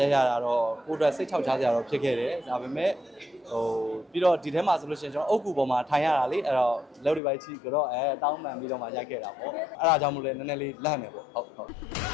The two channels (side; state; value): right; drops out; at 7.2 s